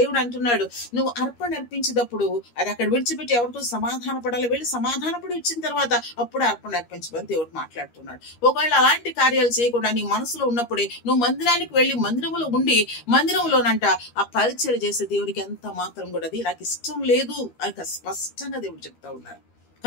అంటున్నాడు నువ్వు అర్పణ అర్పించేటప్పుడు అది అక్కడ విడిచిపెట్టి ఎవరితో సమాధాన పడాలి, వెళ్ళి సమాధానపడి వచ్చిన తర్వాత అప్పుడు అర్పణ అర్పించమని దేవుడు మాట్లాడుతున్నాడు. ఒకవేళ అలాంటి కార్యాలు చేయకుండా నీ మనసులో ఉన్నప్పుడే నువ్వు మందిరానికి వెళ్ళి మందిరంలో ఉండి మందిరంలోనంట ఆ పరిచయం చేసే దేవుడికి ఎంత మాత్రం కూడా అది నాకు ఇష్టం లేదు అని స్పష్టంగా దేవుడు చెప్తా ఉన్నారు.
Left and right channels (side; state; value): right; late; 13 ms